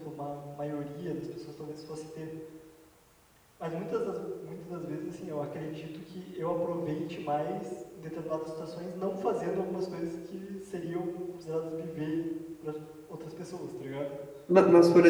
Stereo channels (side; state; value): both; identical; correlation 1.00